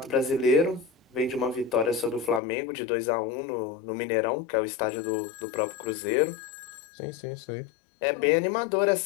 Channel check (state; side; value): drops out; right; at 2.4 s